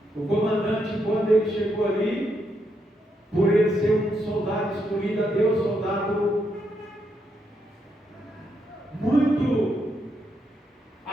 o comandante, quando ele chegou ali, por ele ser um soldado escolhido a Deus, soldado muito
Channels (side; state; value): both; normal; correlation 0.79